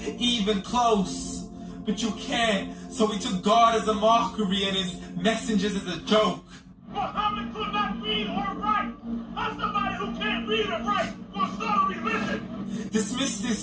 even close. But you can't, so we took God as a mockery and his messengers as a joke. Muhammad could not read or write. How somebody who can't read or write gonna start a religion? Dismiss the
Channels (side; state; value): both; identical; correlation 1.00